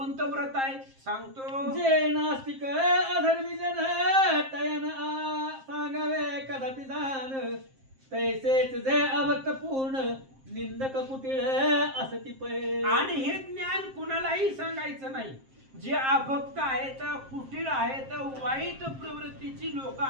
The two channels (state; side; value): late; left; 7.5 ms